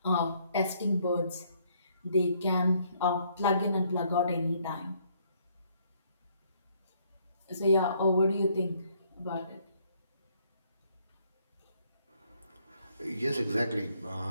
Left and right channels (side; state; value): both; inverted; correlation -0.67